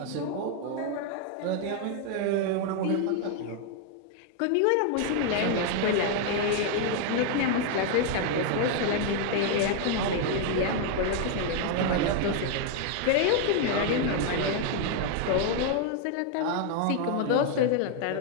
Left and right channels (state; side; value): different; both; correlation 0.00